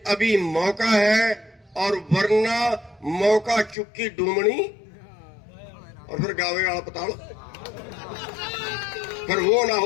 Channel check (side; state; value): right; drops out; at 3.8 s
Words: अभी मौका है, और वरना मौका चुक्की डूमनी और फिर गावे वाला पताल, फिर वो ना